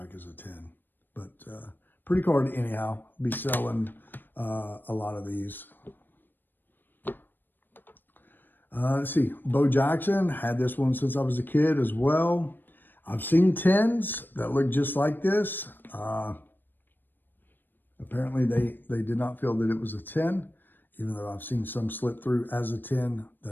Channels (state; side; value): late; right; 0.093 ms